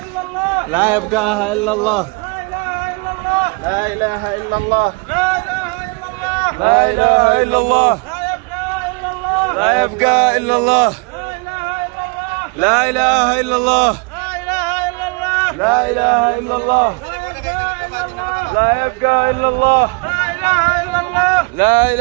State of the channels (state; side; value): quieter; left; 31.1 dB